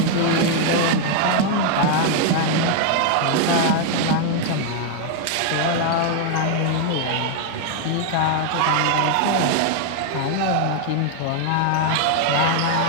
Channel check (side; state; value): both; different; correlation 0.00